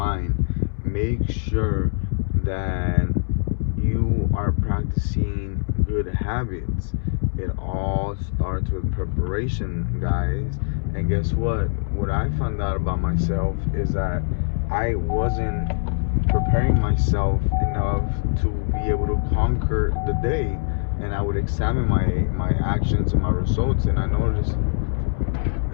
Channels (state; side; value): silent; right; 63 dB below the other